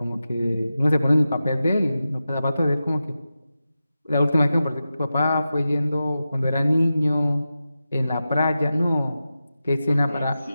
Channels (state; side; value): inverted; both; correlation -0.92